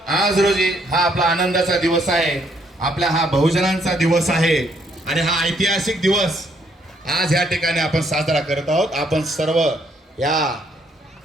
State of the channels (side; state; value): both; normal; correlation 0.70